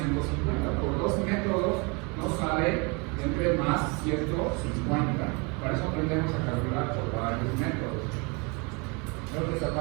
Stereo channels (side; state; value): left; quieter; 30.4 dB